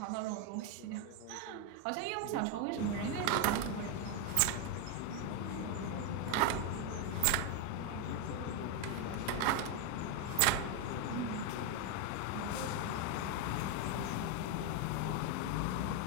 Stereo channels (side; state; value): both; different; correlation 0.01